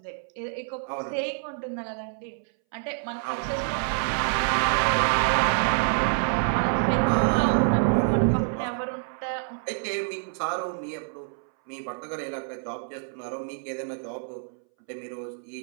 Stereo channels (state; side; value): silent; left; 60 dB below the other